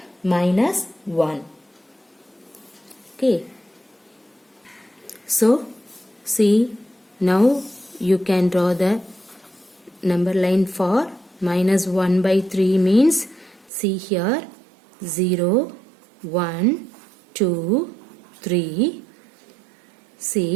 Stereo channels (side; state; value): left; drops out; at 13.7 s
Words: minus 1. Okay. So see, now you can draw the number line for minus 1 by 3 means, see here 0, 1, 2, 3.